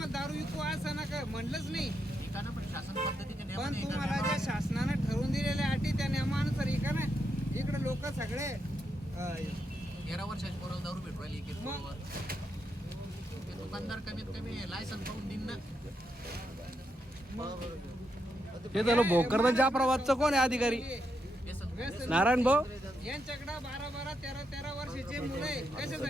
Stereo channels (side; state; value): both; normal; correlation 0.82